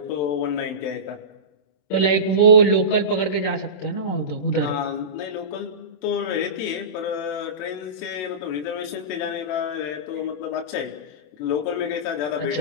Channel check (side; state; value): right; late; 27 ms